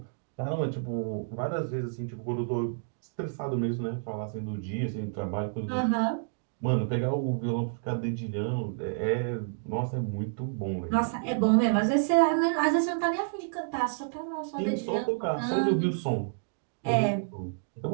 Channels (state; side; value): silent; left; digital silence